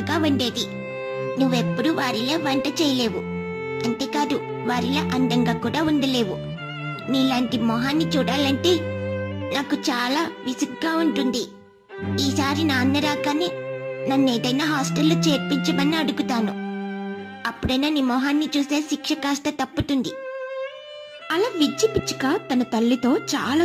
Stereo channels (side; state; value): both; identical; correlation 1.00